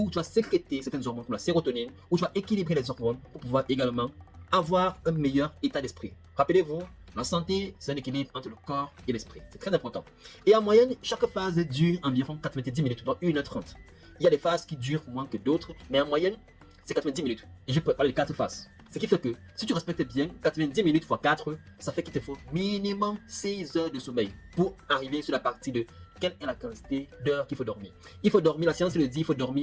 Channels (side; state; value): both; identical; correlation 1.00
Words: tu vas sécréter certaines hormones comme la sérotonine, où tu vas équilibrer les hormones pour pouvoir également avoir un meilleur état d'esprit. Rappelez-vous, la santé, c'est un équilibre entre le corps et l'esprit. C'est très important. Et en moyenne, chaque phase dure environ 90 minutes, donc 1h30. Il y a des phases qui durent moins que d'autres, mais en moyenne, c'est 90 minutes. Et je peux parler de 4 phases. Ce qui fait que si tu respectes bien 90 minutes x 4, ça fait qu'il te faut minimum 6 heures de sommeil pour arriver sur la partie de quelle est la quantité d'heures qu'il faut dormir. Il faut dormir, la science le dit, il faut